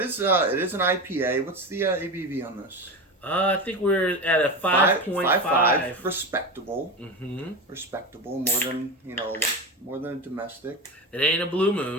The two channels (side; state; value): both; normal; correlation 0.22